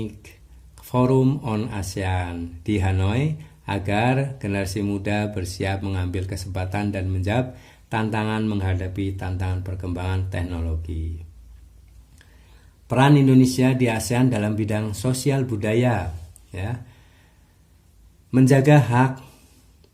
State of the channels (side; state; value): both; identical; correlation 1.00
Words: Forum on ASEAN di Hanoi agar generasi muda bersiap mengambil kesempatan dan menjawab tantangan menghadapi tantangan perkembangan teknologi. Peran Indonesia di ASEAN dalam bidang sosial budaya ya. Menjaga hak